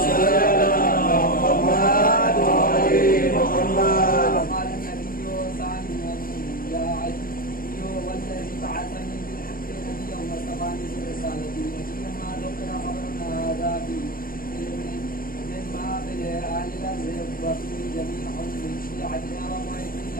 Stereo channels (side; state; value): right; late; 0.41 ms